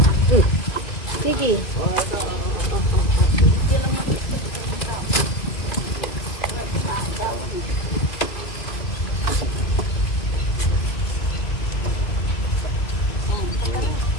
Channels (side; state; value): right; late; 2.5 ms